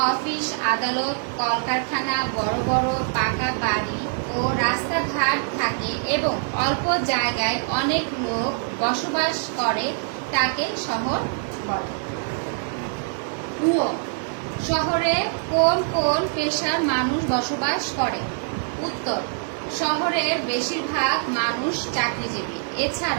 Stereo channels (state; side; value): silent; left; 63 dB below the other